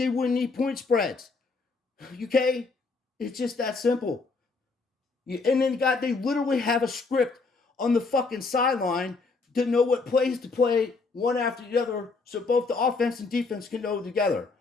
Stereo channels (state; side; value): quieter; right; 4.1 dB